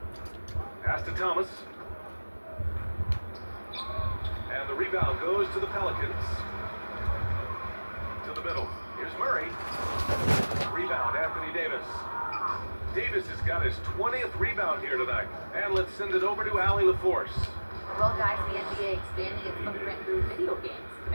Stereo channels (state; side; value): inverted; both; correlation -1.00